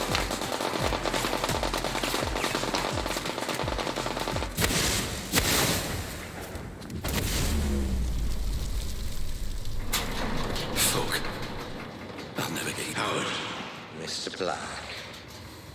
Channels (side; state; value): both; identical; correlation 1.00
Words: Howard. Mr. Black.